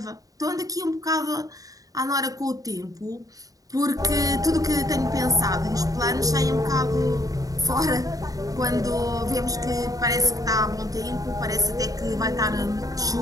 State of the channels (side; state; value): left; late; 0.17 ms